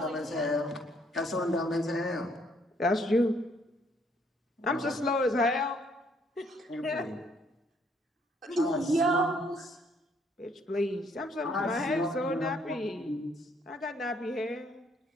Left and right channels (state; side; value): normal; both; correlation 0.67